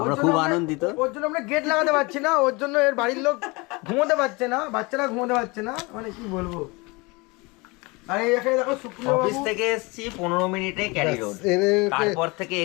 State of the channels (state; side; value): quieter; right; 26.0 dB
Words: খুব আনন্দিত ওর জন্য আমরা গেট লাগাতে পারছি না, ওর জন্য এর বাড়ির লোক ঘুমোতে পারছে না, বাচ্চারা ঘুমোতে পারছে না, মানে কি বলবো। আর এই এখানে দেখো সুপ্রিয় অফিস বাবু। থেকে এসেছি 15 মিনিটে ক্যারি রোড তারপর থেকে